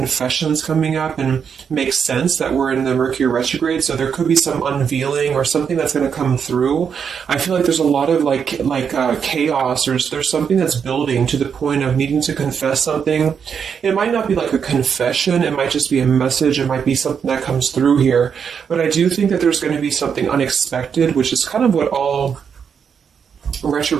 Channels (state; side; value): quieter; left; 7.0 dB